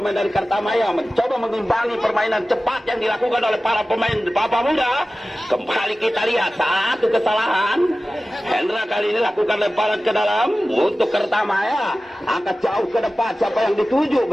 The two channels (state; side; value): normal; both; correlation 0.96